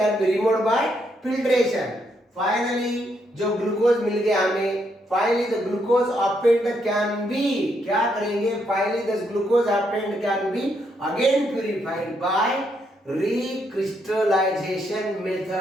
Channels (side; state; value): both; normal; correlation 0.76